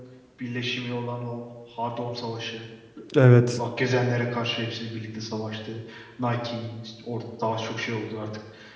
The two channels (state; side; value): identical; both; correlation 1.00